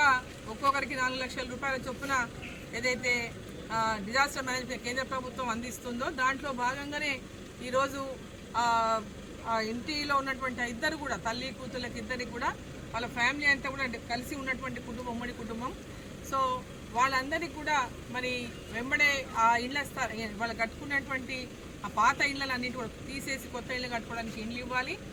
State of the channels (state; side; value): identical; both; correlation 1.00